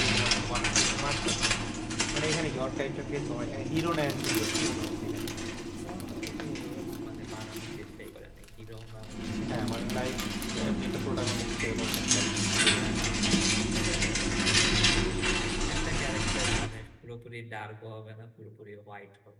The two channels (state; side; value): identical; both; correlation 1.00